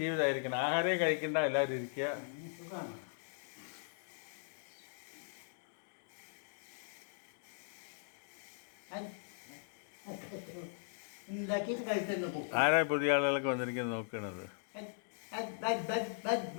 ആഹാരമേ കഴിക്കണ്ട, എല്ലാവരും ഇരിക്കുക. ആരാ പുതിയ ആളുകളൊക്കെ വന്നിരിക്കുന്നത് നോക്കണത്?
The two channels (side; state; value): right; silent; digital silence